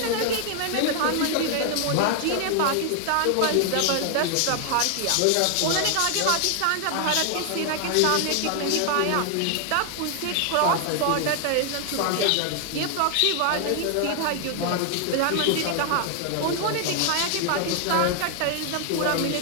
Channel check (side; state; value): both; different; correlation 0.00